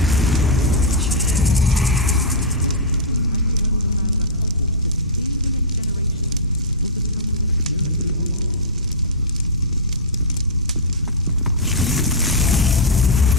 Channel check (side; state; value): both; normal; correlation -0.12